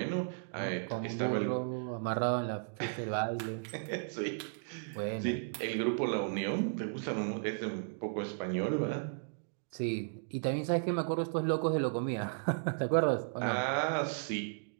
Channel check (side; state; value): left; silent; digital silence